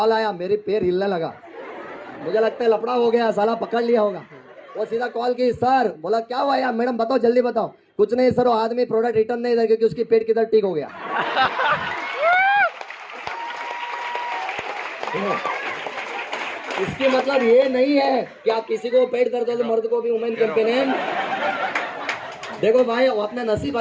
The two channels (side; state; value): both; identical; correlation 1.00